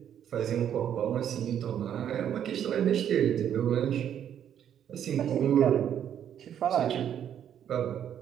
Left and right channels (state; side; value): quieter; left; 9.6 dB